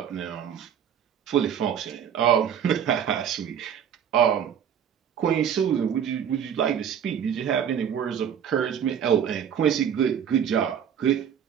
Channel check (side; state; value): left; quieter; 8.6 dB